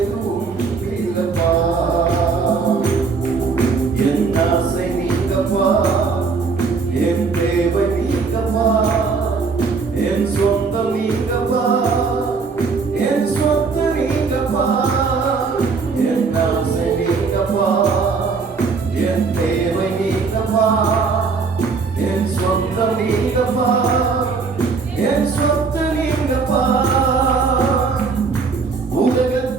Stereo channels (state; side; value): quieter; left; 4.8 dB